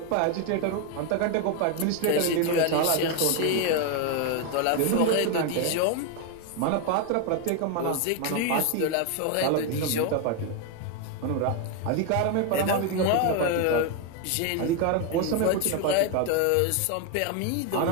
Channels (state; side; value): different; both; correlation 0.01